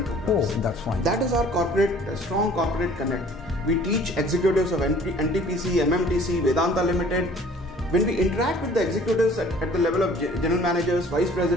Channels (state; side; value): normal; both; correlation 0.52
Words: programs. Oh, that's fine. That is our strong corporate connect. We teach executives of NTPC, MMTC, Vedanta Limited. When we interact with the executives at the level of general managers, vice